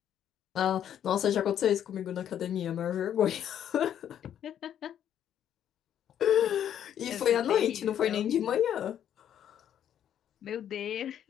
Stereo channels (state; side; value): quieter; right; 9.9 dB